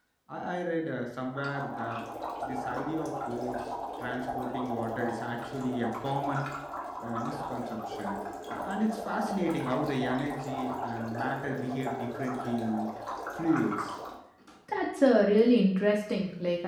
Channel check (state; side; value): identical; both; correlation 1.00